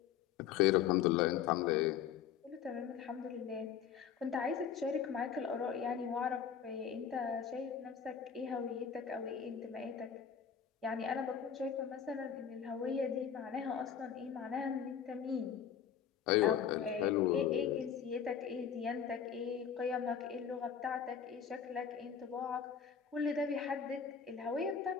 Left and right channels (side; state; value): right; quieter; 7.9 dB